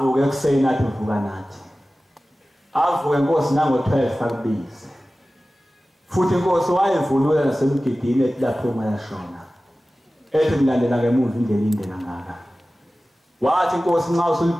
ekuseni athi uvuka nathi avuke Nkosi nango-12 akubize futhi Nkosi wayevulula nasemgidini ethi lapho mayashona ethi ngilandela ngemuva indlela inde kangaka wathi Nkosi nxa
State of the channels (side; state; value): both; normal; correlation 0.96